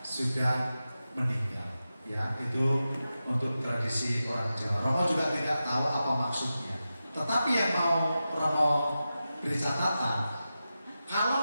meninggal. Ya, itu untuk tradisi orang Jawa. Romo juga tidak tahu apa maksudnya. Tetapi yang mau Romo beri catatan,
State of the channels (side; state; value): both; inverted; correlation -0.92